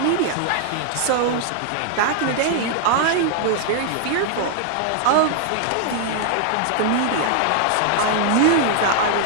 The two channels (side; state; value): both; different; correlation -0.01